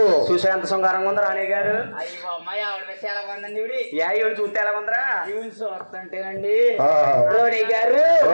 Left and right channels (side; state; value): both; inverted; correlation -1.00